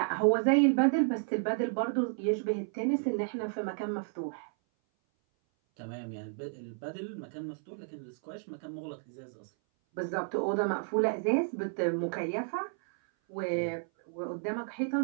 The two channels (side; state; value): left; silent; 56 dB below the other